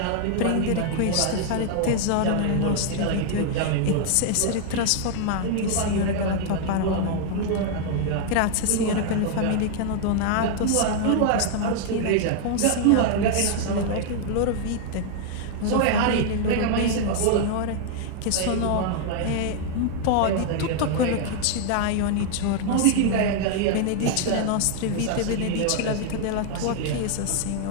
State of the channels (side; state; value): both; different; correlation 0.00